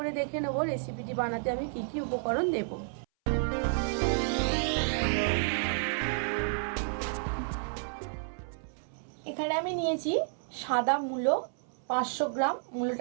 দেখে নেব রেসিপিটি বানাতে আমি কি কি উপকরণ দেব। এখানে আমি নিয়েছি সাদা মূলো 500 গ্রাম।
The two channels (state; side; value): silent; left; 57 dB below the other